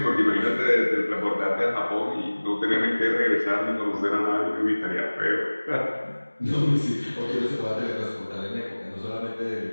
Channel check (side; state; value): both; inverted; correlation -1.00